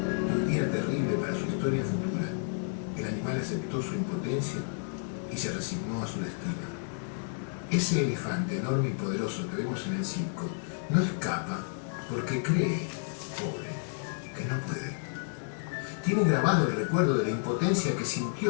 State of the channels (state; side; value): silent; right; digital silence